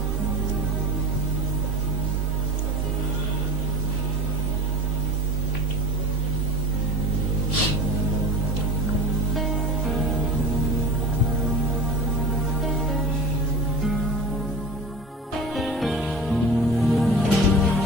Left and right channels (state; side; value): normal; both; correlation 0.35